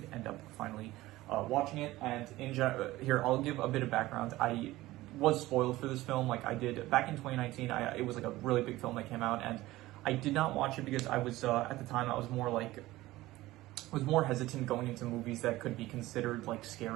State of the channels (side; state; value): left; quieter; 17.6 dB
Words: end up finally watching it. And here I'll give a bit of background. I was spoiled for this film, like I did back in 2019. It was like a really big film that came out, and I did not watch it because I was at the time I was more hesitant going into movies that could be considered like